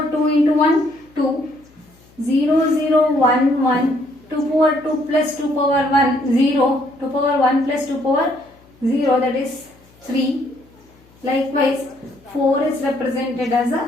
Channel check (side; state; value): left; noise; hum, 29 dB below the sound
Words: 2 into 1, 2. 0011. 2 power 2 plus 2 power 1, 0. 2 power 1 plus 2 power 0, that is 3. Likewise, 4 is represented as